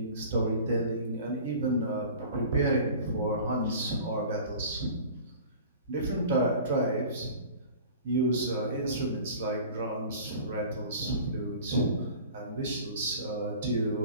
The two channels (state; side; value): inverted; both; correlation -0.41